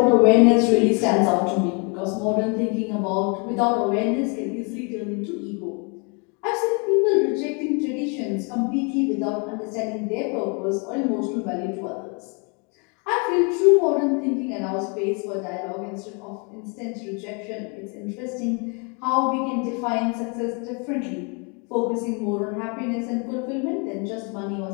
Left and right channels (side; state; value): right; quieter; 34.6 dB